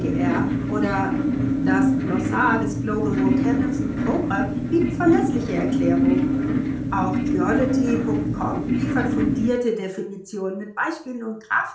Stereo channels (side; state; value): both; identical; correlation 1.00